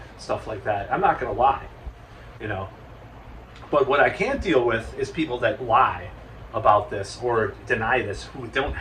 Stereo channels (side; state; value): both; identical; correlation 1.00